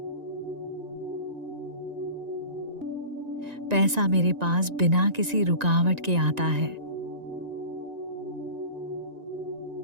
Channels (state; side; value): late; left; 1.9 ms